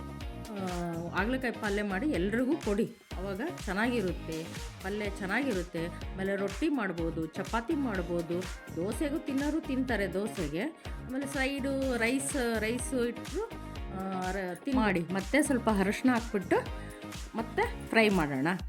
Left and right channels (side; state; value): both; identical; correlation 1.00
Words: ಹಾಗಲಕಾಯಿ ಪಲ್ಯ ಮಾಡಿ ಎಲ್ರಿಗೂ ಕೊಡಿ, ಆವಾಗ ಚೆನ್ನಾಗಿರುತ್ತೆ, ಪಲ್ಯ ಚೆನ್ನಾಗಿರುತ್ತೆ. ಆಮೇಲೆ ರೊಟ್ಟಿ ಮಾಡ್ಬೋದು, ಚಪಾತಿ ಮಾಡ್ಬೋದು, ದೋಸೆಗೂ ತಿನ್ನೋರು ತಿಂತಾರೆ ದೋಸೆಗೆ. ಆಮೇಲೆ ಸೈಡು ರೈಸು ಇಟ್ಟರು ಮಾಡಿ ಮತ್ತೆ ಸ್ವಲ್ಪ ಅರಿಶಿನ ಹಾಕ್ಬಿಟ್ಟು ಮತ್ತೆ ಫ್ರೈ ಮಾಡೋಣ.